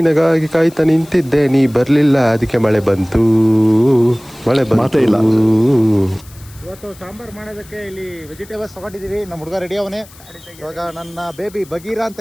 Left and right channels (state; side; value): noise; left; hiss, 23 dB below the sound